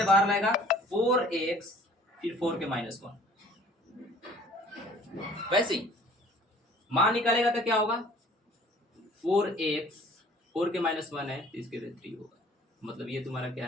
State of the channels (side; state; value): both; normal; correlation 0.52